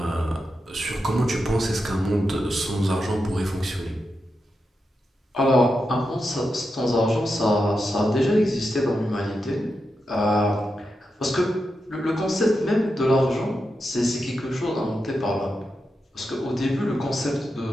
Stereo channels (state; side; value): normal; both; correlation 0.88